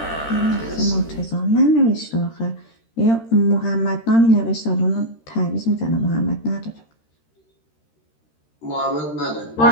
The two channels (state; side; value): late; right; 13 ms